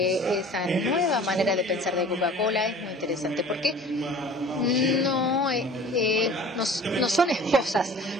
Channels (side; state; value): both; normal; correlation 0.44